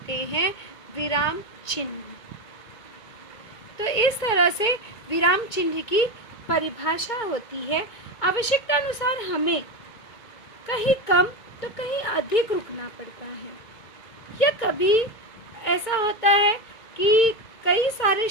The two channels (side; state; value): right; late; 2.2 ms